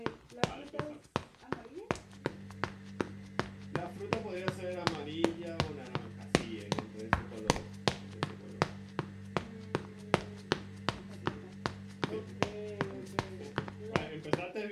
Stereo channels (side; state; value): both; identical; correlation 1.00